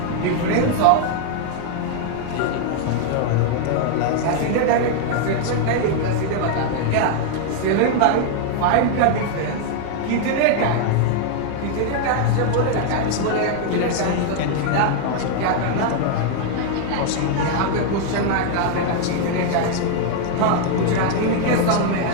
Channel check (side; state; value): both; different; correlation 0.00